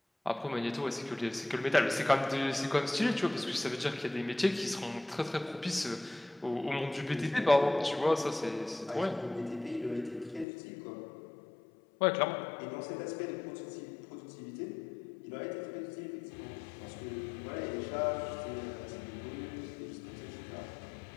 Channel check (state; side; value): drops out; right; at 10.5 s